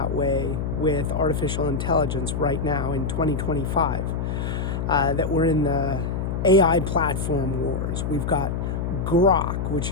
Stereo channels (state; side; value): noise; left; hum, 2 dB below the sound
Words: way with artificial intelligence right now in 2025, that we're in the AI platform wars. We've got Grok,